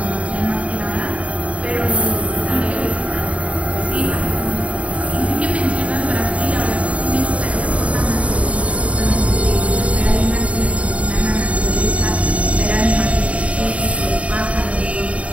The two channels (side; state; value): left; late; 0.064 ms